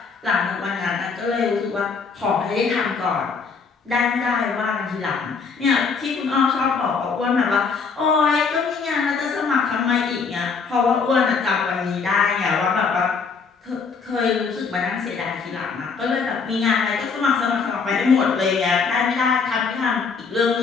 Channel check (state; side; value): quieter; right; 5.2 dB